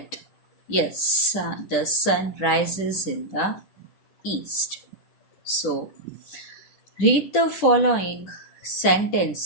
yes, the sun rises in the east. So read the following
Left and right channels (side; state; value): right; late; 10 ms